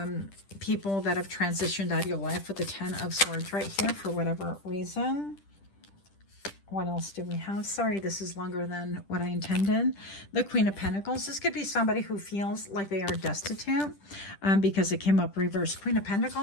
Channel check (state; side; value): late; right; 10 ms